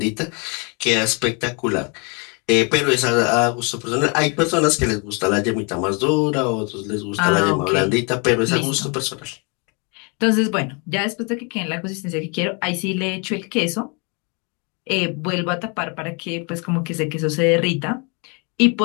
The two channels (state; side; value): quieter; right; 33.5 dB